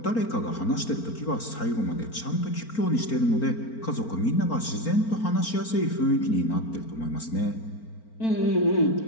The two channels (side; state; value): right; late; 4.4 ms